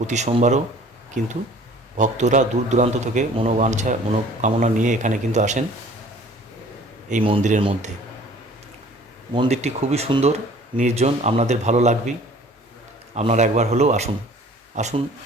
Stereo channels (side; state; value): both; normal; correlation 0.50